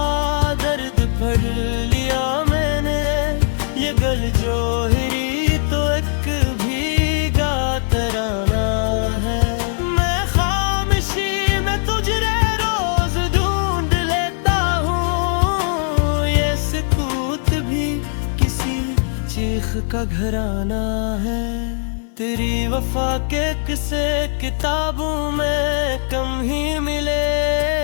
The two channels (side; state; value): right; silent; 58 dB below the other